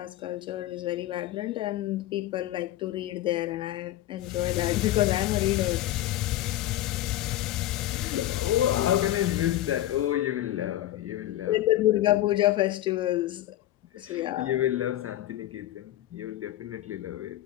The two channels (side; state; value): right; quieter; 14.1 dB